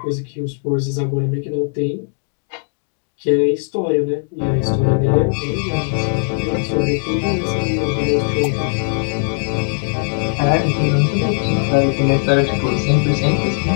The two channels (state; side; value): silent; right; digital silence